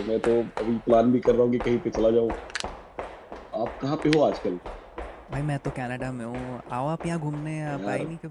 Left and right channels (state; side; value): identical; both; correlation 1.00